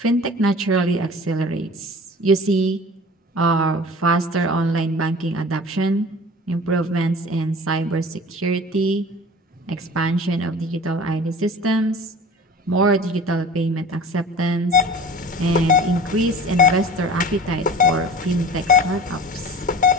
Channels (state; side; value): normal; both; correlation 0.40